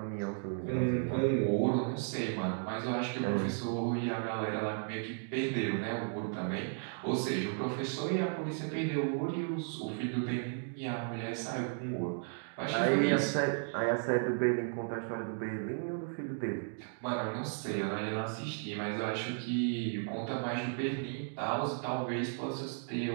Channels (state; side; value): silent; left; 55 dB below the other